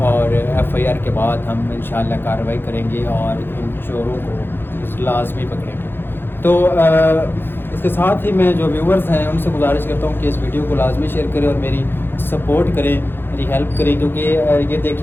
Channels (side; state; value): right; late; 0.10 ms